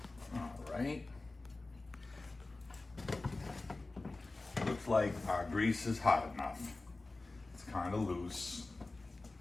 Okay. All right. Looks like our grease is hot enough. It's kind of loose,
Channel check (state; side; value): quieter; right; 3.2 dB